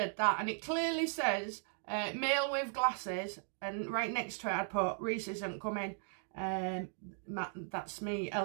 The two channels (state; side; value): silent; left; 53 dB below the other